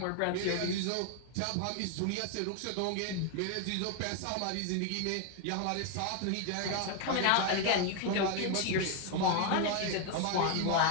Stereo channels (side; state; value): both; different; correlation 0.01